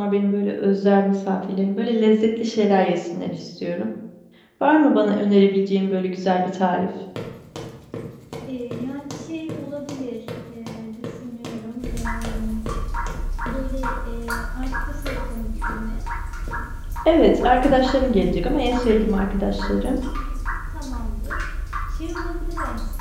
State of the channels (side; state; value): both; identical; correlation 1.00